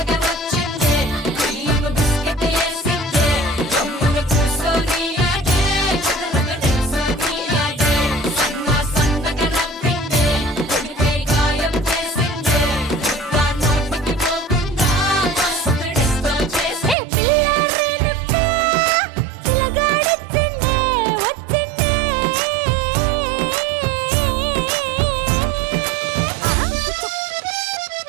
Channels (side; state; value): left; drops out; at 16.9 s